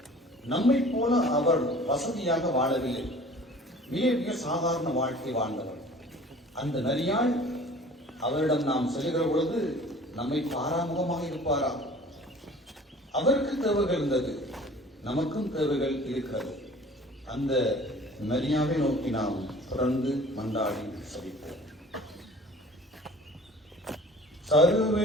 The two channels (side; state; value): both; normal; correlation 0.47